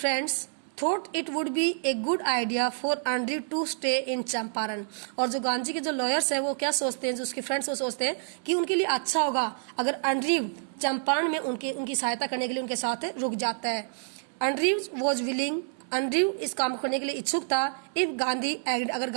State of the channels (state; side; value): silent; left; 58 dB below the other